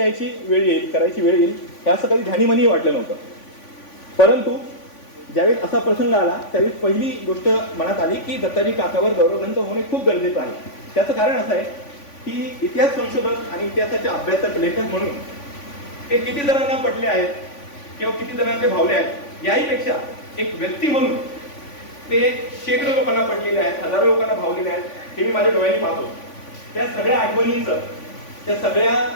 वेळ येईल, करायची वेळ येईल, हे असं कधी ध्यानीमनीही वाटलं नव्हतं. परंतु ज्यावेळेस असा प्रसंग आला त्यावेळेस पहिली गोष्ट मनात आली की दत्ताजी काकावर गौरव ग्रंथ होणे खूप गरजेचं आहे. त्याचं कारण असं आहे की इतिहास संशोधक आणि इतिहासाचे अभ्यासक, लेखक म्हणून ते किती जणांना पटले आहेत किंवा किती जणांना ते भावले आहेत याहीपेक्षा एक व्यक्ती म्हणून ते शेकडो लोकांना पटलेले आहेत, हजारो लोकांना भावलेले आहेत. हे मी माझ्या डोळ्यांनी पाहतो. त्या सगळ्या आठवणींचं, त्या सगळ्या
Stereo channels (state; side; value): late; right; 3.5 ms